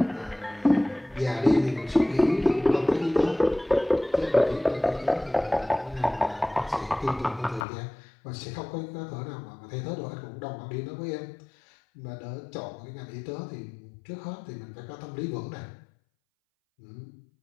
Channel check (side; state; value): right; drops out; at 7.7 s